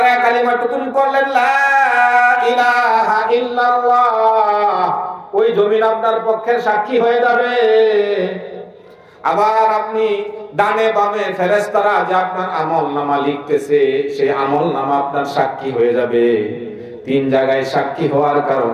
কালিমাটুকুন করলেন লা ইলাহা ইল্লাল্লাহ, ওই জমিন আপনার পক্ষে সাক্ষী হয়ে যাবে। আবার আপনি ডানে বামে ফেরেশতারা যে আপনার আমলনামা লিখতেছে, সেই আমলনামা আপনার সাক্ষী হয়ে যাবে। 3 জায়গায় সাক্ষী হওয়ার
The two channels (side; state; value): both; identical; correlation 1.00